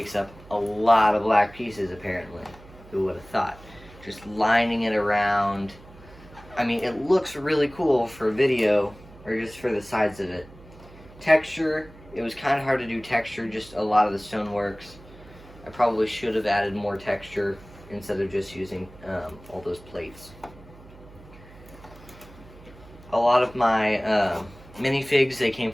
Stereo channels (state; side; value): noise; right; hum, 21 dB below the sound